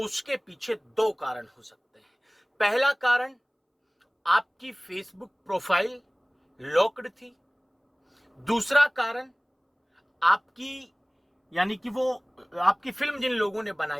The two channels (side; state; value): both; identical; correlation 1.00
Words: पीछे 2 कारण हो सकते हैं। पहला कारण, आपकी फेसबुक प्रोफाइल लॉक्ड थी। दूसरा कारण, आपकी यानी कि वो आपकी फिल्म जिन लोगों ने